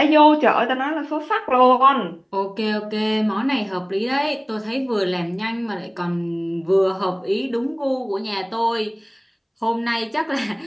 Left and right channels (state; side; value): identical; both; correlation 1.00